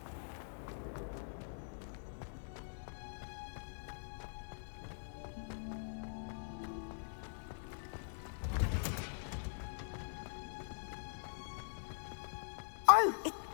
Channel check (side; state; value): right; silent; digital silence